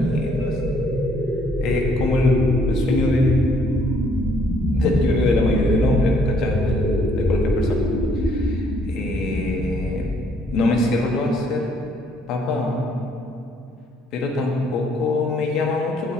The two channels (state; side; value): normal; both; correlation 0.66